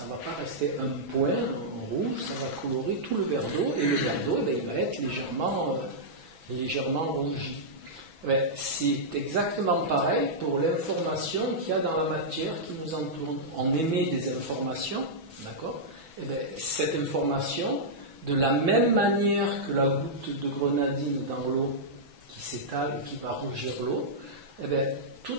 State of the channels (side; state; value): left; late; 6.1 ms